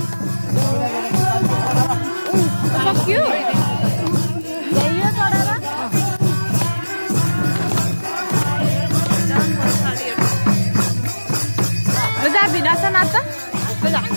सक्यो जा भिनास नाच्छ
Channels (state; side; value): inverted; both; correlation -1.00